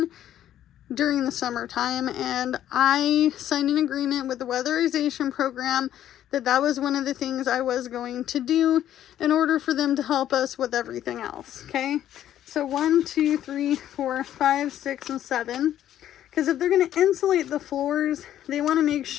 during the summertime, and I signed an agreement with the weatherization program that was one of the things I was going to do in order for them to help us with everything else. Okay, so 1, 2, 3, 4, 5, 6, and 7. Because if they're going to insulate the floors, they want to make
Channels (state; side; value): quieter; right; 11.6 dB